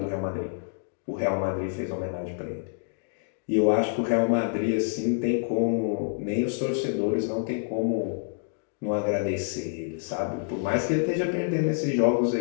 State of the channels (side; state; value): right; silent; digital silence